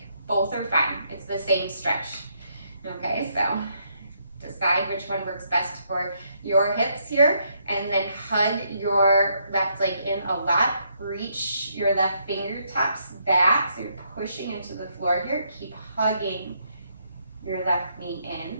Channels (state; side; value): inverted; both; correlation -0.74